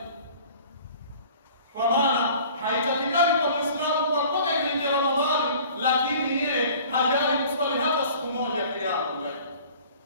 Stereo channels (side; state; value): both; inverted; correlation -0.48